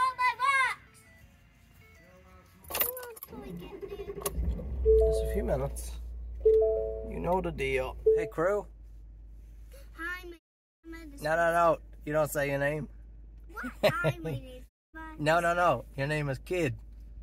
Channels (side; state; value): both; identical; correlation 1.00